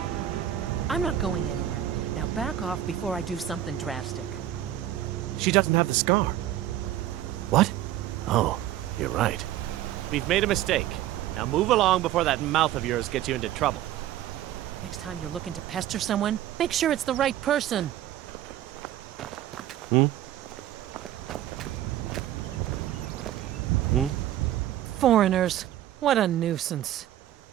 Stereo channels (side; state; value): left; quieter; 12.5 dB